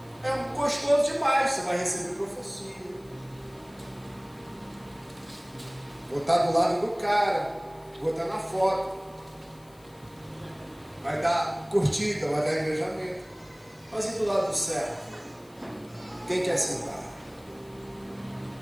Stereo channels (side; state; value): left; noise; hiss, 27 dB below the sound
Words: É gostoso demais. Você vai receber profecia, vou estar do lado do cara, vou estar na foto, vai dar curtida, vai dar engajamento. Mas e do lado do servo? Quem quer sentar?